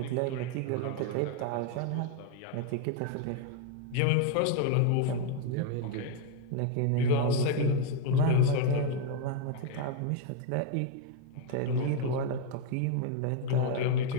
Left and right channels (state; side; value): different; both; correlation 0.01